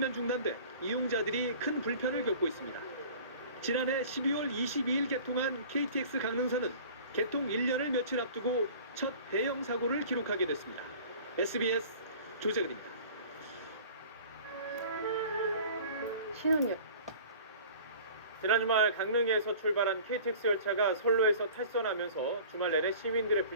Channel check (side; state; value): both; inverted; correlation -0.44